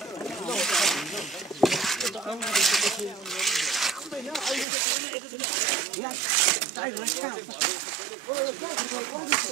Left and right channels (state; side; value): drops out; left; at 4.7 s